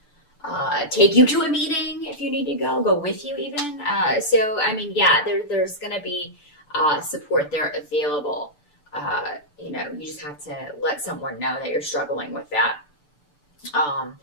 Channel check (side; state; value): right; late; 6.8 ms